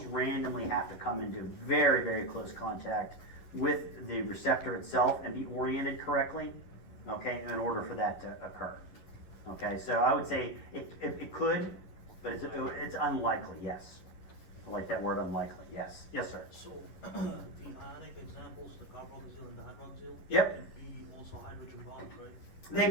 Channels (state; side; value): late; right; 11 ms